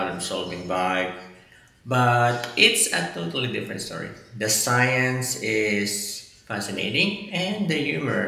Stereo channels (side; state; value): both; identical; correlation 1.00